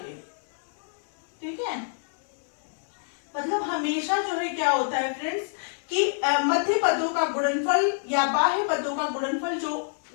ठीक है। मतलब हमेशा जो है क्या होता है फ्रेंड्स कि मध्य पदों का गुणनफल या बाह्य पदों का गुणनफल, जो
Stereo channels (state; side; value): silent; right; digital silence